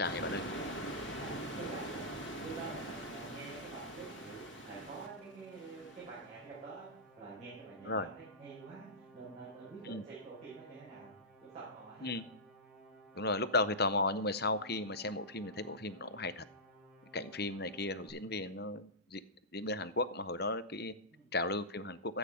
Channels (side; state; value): both; normal; correlation -0.15